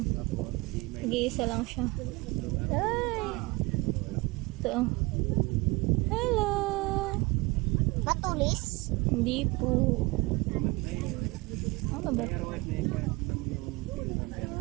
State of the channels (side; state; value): left; quieter; 24.3 dB